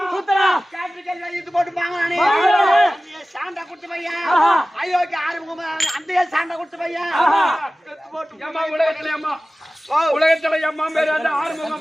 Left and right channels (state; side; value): normal; both; correlation 0.97